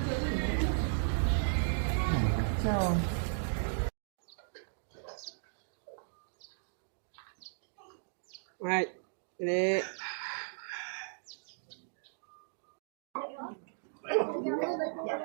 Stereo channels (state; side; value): silent; left; digital silence